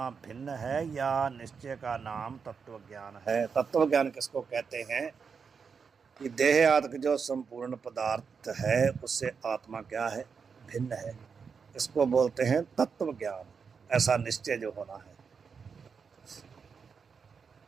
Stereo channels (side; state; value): left; quieter; 5.9 dB